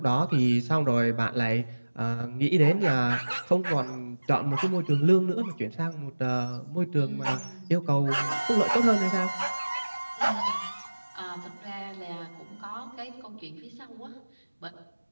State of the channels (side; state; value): both; inverted; correlation -1.00